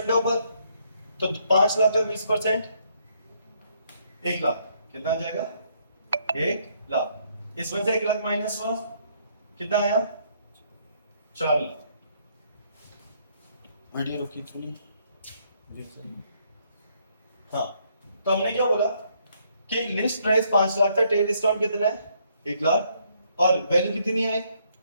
है ऊपर, तो 5 लाख का 20% 1 लाख, कितना आ जाएगा 1 लाख। इसमें से 1 लाख माइनस हुआ, कितना आया 4 लाख। वीडियो रुकी थोड़ी। हाँ, तो हमने क्या बोला कि लिस्ट प्राइस 5 लाख था, ट्रेड डिस्काउंट कितना है 1 लाख, और वैल्यू कितनी आई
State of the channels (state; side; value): inverted; both; correlation -0.70